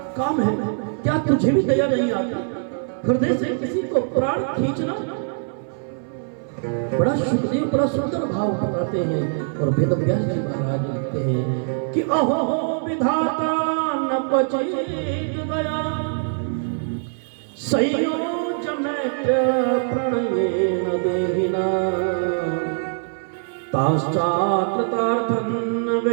काम है? क्या तुझे भी दया नहीं आती? हृदय से किसी को प्राण खींचना। बड़ा सुखदेव बड़ा सुंदर भाव बताते हैं और वेद व्यास जी महाराज लिखते हैं कि अहो विधाता न बचेत दया, संयोज मैत्र प्रणयेन देहिना, ताश्चाकृतार्थं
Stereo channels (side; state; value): left; silent; 59 dB below the other